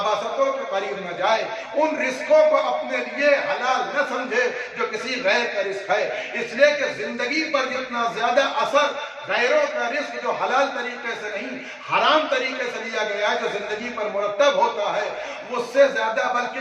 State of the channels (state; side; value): identical; both; correlation 1.00